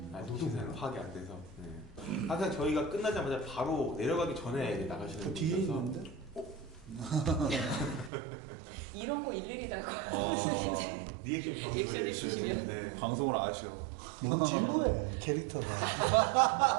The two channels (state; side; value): drops out; left; at 8.1 s